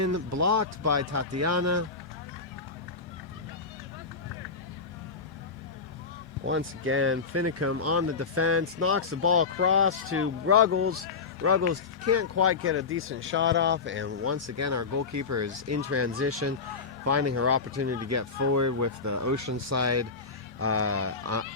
blocked by Tatiana. Once again, Finicum on the defense, knocks the ball across to Ruggles. Ruggles can't quite get a decent shot off, and once again our goalkeeper is in transition, finding her opportunity to get forward with the Oceanside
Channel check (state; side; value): quieter; right; 4.8 dB